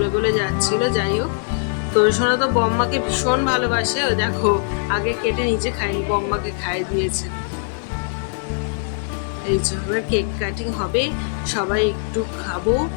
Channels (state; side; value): silent; right; digital silence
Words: গলে যাচ্ছিল। যাই হোক, তোদের সোনা তো বম্মাকে ভীষণ ভালোবাসে, ও দেখো আগে কেটে নিজে খায়নি, বম্মাকে খাইয়ে দিয়েছে। এই যে এবার কেক কাটিং হবে, সবাই একটু খাবো।